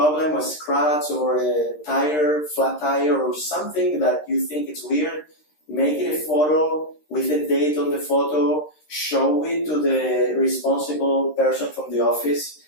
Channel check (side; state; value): right; late; 13 ms